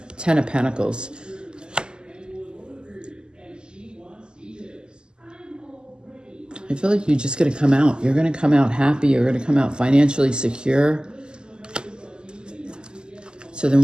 Ten of Pentacles. I feel like you're just going to come out. You're going to come out happy. You're going to come out financially secure. So then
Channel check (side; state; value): left; late; 0.047 ms